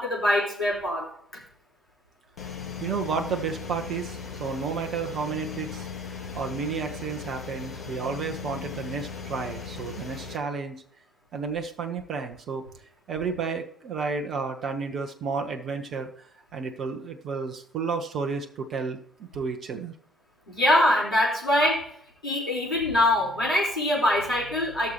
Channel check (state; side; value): normal; both; correlation 0.58